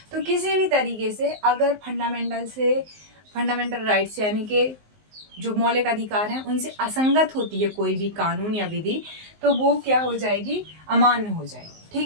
तो किसी भी तरीके से अगर फंडामेंटल राइट्स यानी कि जो मौलिक अधिकार हैं उनसे असंगत होती है कोई भी कानून या विधि, तो वो क्या हो जाएगी? अमान्य हो जाएगी, ठीक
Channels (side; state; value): left; late; 19 ms